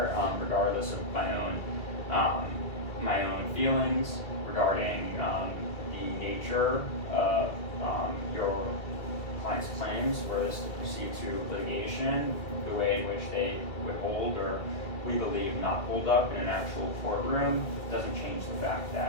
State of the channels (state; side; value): late; right; 2.2 ms